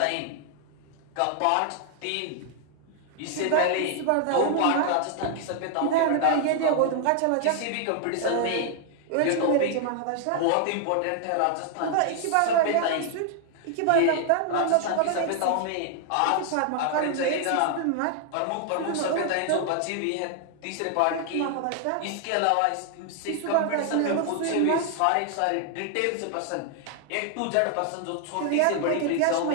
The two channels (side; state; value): both; different; correlation 0.00